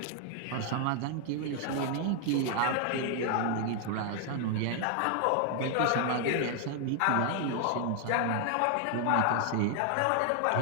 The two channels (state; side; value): different; both; correlation 0.00